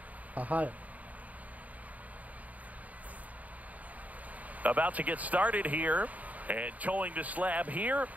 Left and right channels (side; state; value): left; late; 0.074 ms